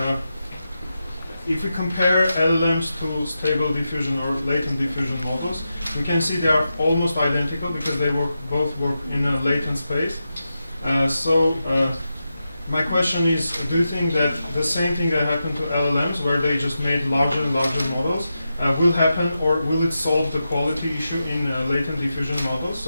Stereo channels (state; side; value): inverted; both; correlation -0.89